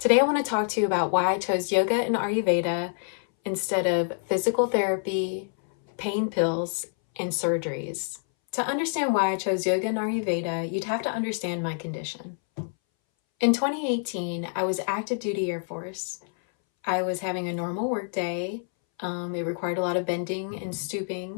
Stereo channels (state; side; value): silent; right; 60 dB below the other